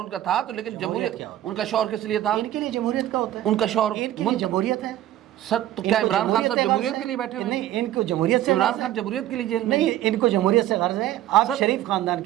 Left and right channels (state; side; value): quieter; left; 13.3 dB